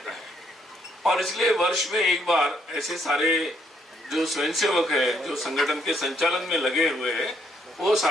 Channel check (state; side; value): normal; both; correlation 0.71